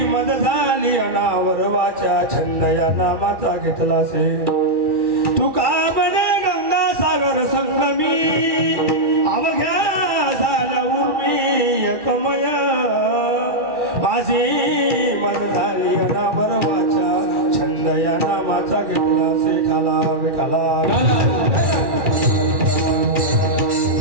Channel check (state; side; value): late; left; 1.1 ms